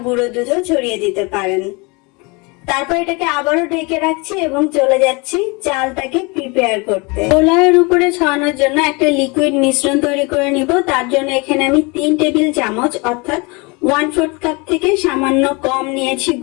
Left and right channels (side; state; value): right; quieter; 28.2 dB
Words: গুঁড়ো দুধও ছড়িয়ে দিতে পারেন। তারপর এটাকে আবারও ঢেকে রাখছি এবং চলে যাচ্ছি চালটাকে প্রিপেয়ার করতে। পোলাওয়ের উপরে ছড়ানোর জন্য একটা লিকুইড মিশ্রণ তৈরি করে নিব। তার জন্য এখানে আমি 3 টেবিল চামচ অর্থাৎ 1/4 কাপ থেকে সামান্য কম নিয়েছি